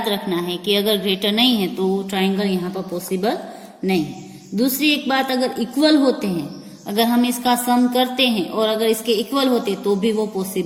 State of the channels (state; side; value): identical; both; correlation 1.00